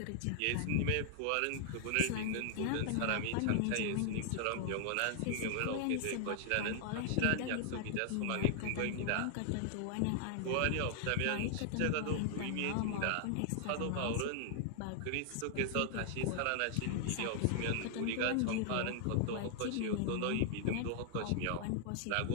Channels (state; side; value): different; both; correlation 0.00